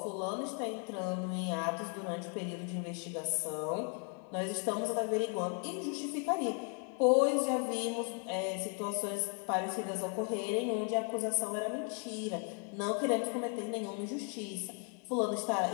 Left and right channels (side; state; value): right; quieter; 39.2 dB